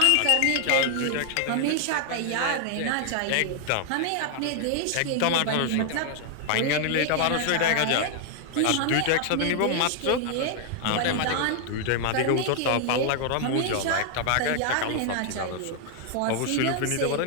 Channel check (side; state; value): both; different; correlation 0.00